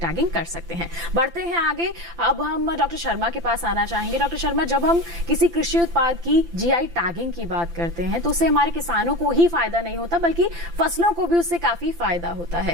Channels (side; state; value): left; late; 5.8 ms